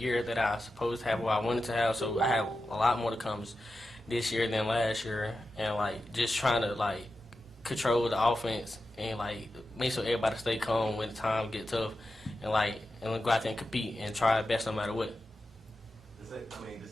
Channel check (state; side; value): normal; both; correlation 0.91